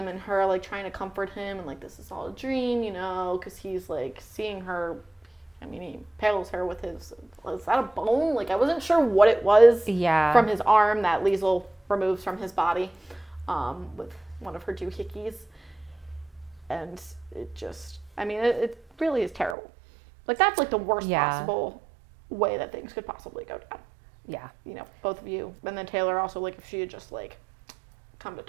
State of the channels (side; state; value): left; drops out; at 19.6 s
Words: and her like trying to comfort him and like this is all a dream, because he's like seeing her. I mean, he impales her with is that a bone? Like I wasn't sure what it was from his arm that Liesl removes from his body with one of her doohickeys. And it just, it really is terrible. Like that's like the worst possible way that things could possibly go down. Yeah. Both of you. And then Taylor also, like if she had just like come to